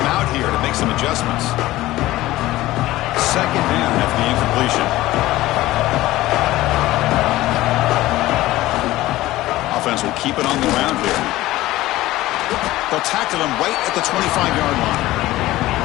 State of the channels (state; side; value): quieter; right; 16.8 dB